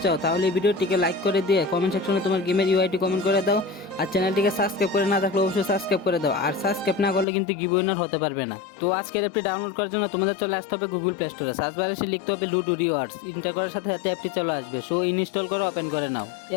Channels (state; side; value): drops out; right; at 7.2 s